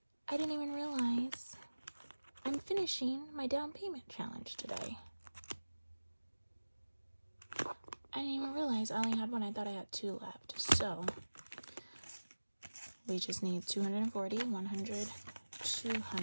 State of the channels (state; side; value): inverted; both; correlation -1.00